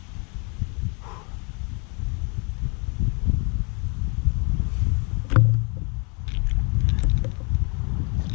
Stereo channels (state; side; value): quieter; right; 33.6 dB